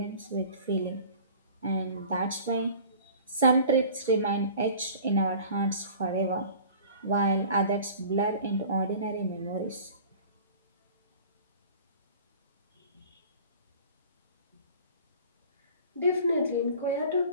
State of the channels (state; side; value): inverted; both; correlation -0.44